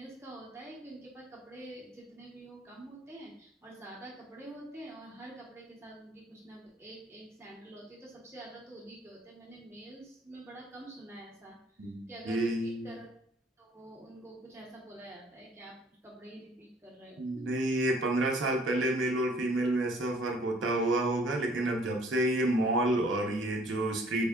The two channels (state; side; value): normal; both; correlation 0.58